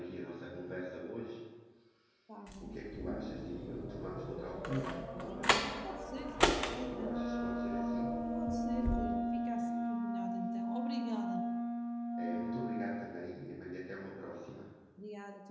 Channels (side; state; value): both; identical; correlation 1.00